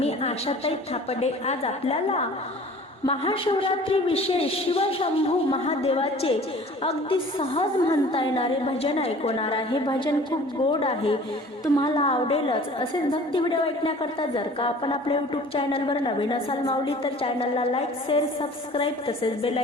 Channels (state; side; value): normal; both; correlation 0.47